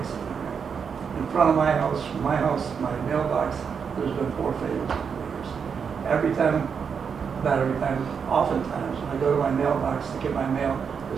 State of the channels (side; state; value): left; quieter; 6.5 dB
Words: rate. In front of my house, from my house to my mailbox, there's been 4 failures in 4 years. Oftentimes, when I go to my mailbox to get my mail,